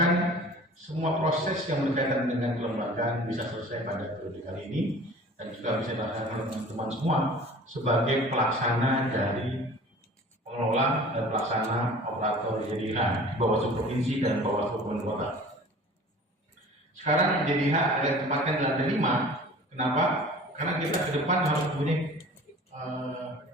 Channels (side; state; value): both; normal; correlation 0.44